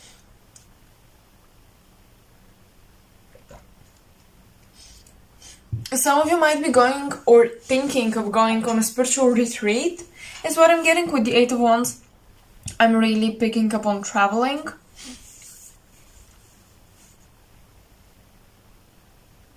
Some of you might be going or thinking of going on a spiritual retreat, is what I'm getting with the Eight of Wands. I'm really picking up on traveling.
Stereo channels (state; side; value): identical; both; correlation 1.00